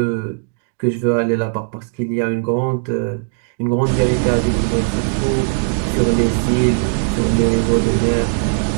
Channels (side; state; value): left; silent; digital silence